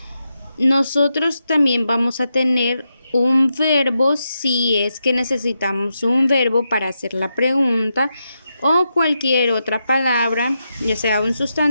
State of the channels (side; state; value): both; inverted; correlation -0.86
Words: nosotros también vamos a tener un verbo si es que necesitamos un verbo para hacer la pregunta o cualquier otra palabra, ya sea un